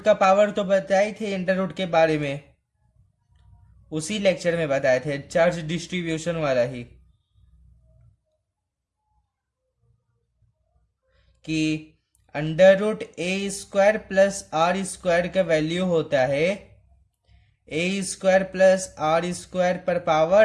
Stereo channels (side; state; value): both; identical; correlation 1.00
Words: का पावर। तो बताए थे अंडर रूट के बारे में, उसी लेक्चर में बताए थे, चार्ज डिस्ट्रीब्यूशन वाला ही, कि under root a square plus r square का वैल्यू होता है a square plus r square पर